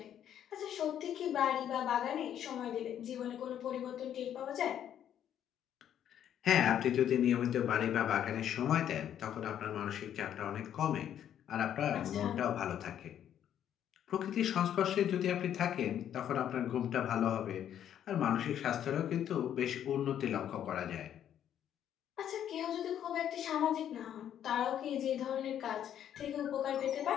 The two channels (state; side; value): quieter; right; 10.1 dB